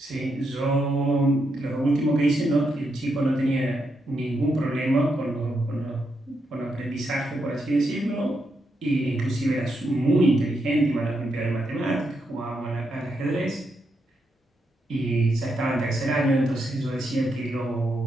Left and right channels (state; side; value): normal; both; correlation 0.82